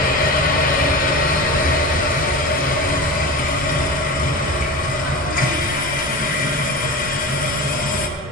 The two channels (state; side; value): normal; both; correlation 0.29